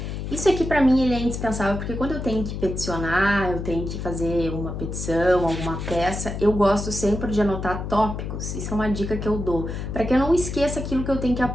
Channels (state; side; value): noise; left; hum, 5 dB below the sound